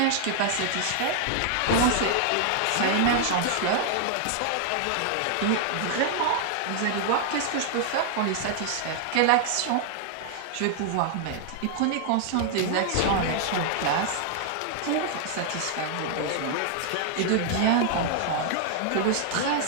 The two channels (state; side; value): different; both; correlation 0.00